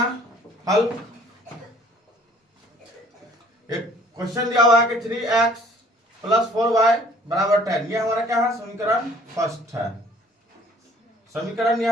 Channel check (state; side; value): normal; both; correlation 0.56